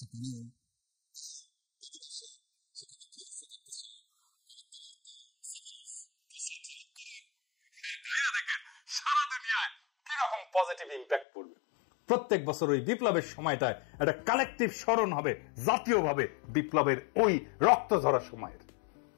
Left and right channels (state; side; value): drops out; right; at 11.2 s